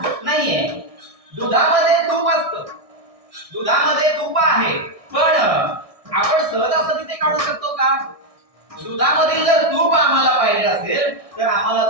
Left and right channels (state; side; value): late; left; 1.6 ms